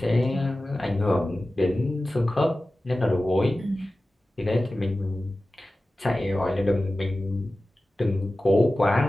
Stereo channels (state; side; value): normal; both; correlation 0.95